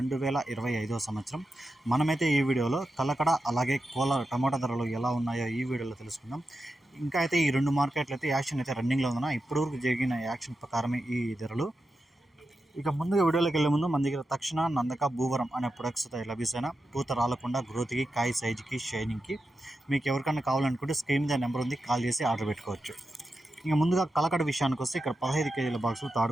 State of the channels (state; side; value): normal; both; correlation 0.89